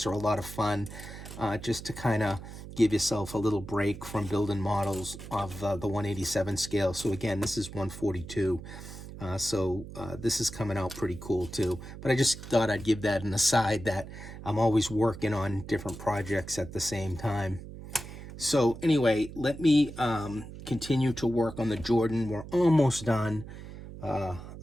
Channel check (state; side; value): noise; right; hum, 13 dB below the sound